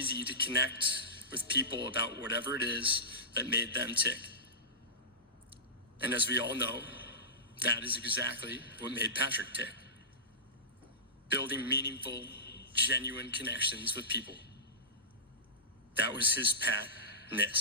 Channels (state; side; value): normal; both; correlation -0.18